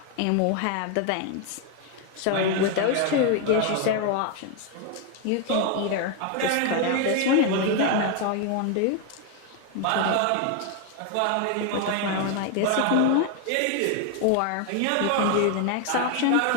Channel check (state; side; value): different; both; correlation 0.01